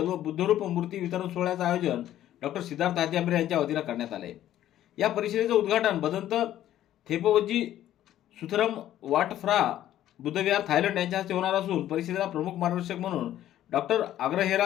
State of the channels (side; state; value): right; quieter; 12.5 dB